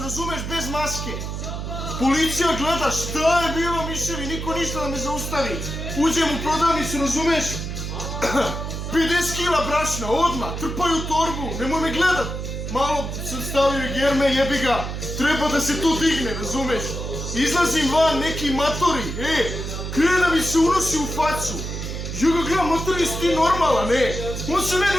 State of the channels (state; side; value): noise; right; hum, 5 dB below the sound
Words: razumeš, bez maske. Policija gleda šta je bilo, miševi, niko ništa da me zaustavi. Uđem u prodavnicu, razumeš? 50 kila brašna, odmah, trpaju torbu, nemoj me gledat. Malo sam stavio i germe, jebi ga, treba da se to digne, razumeš? Izlazim van, neki matori, krene da mi se unosi u facu. Ja ga gledam, matori, jesi ti normalan, on se